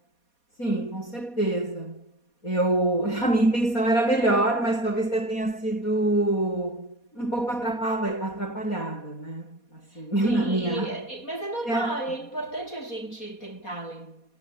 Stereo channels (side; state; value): right; late; 4.2 ms